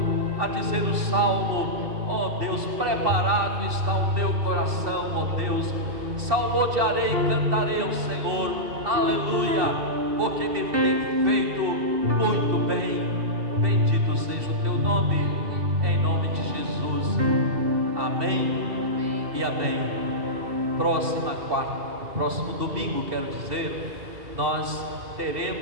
a dizer o salmo, ó Deus, preparado está o teu coração, ó Deus, salmodiarei e cantarei ao Senhor, aleluia, porque me tem feito muito bem. Bendito seja o teu nome, em nome de Jesus. Amém e amém. Próximo domingo, quero dizer, nós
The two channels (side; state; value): left; late; 2.7 ms